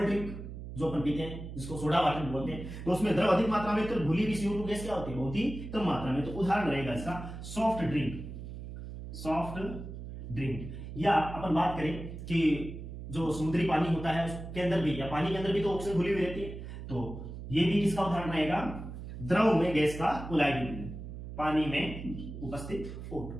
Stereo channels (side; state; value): right; noise; hum, 10 dB below the sound